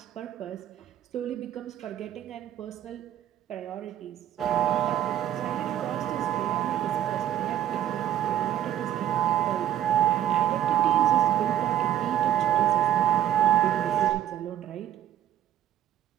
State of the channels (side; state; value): left; quieter; 11.7 dB